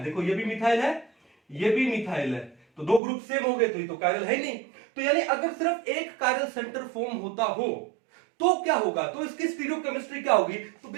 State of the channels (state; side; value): drops out; left; at 3.0 s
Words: देखो ये भी मिथाइल है, ये भी मिथाइल है, तो दो ग्रुप सेम हो गए, तो ये तो कायरल है ही नहीं। तो यानी अगर सिर्फ एक कायरल सेंटर फॉर्म होता हो तो क्या होगा, तो इसकी स्टीरियोकेमिस्ट्री क्या होगी, तो